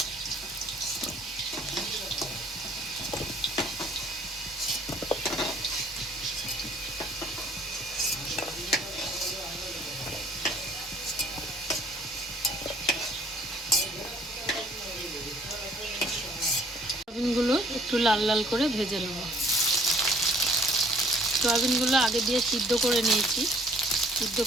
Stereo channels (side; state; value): both; normal; correlation 0.58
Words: সোয়াবিনগুলো একটু লাল লাল করে ভেজে নেব। সোয়াবিনগুলো আগে দিয়ে সিদ্ধ করে নিয়েছি, সিদ্ধ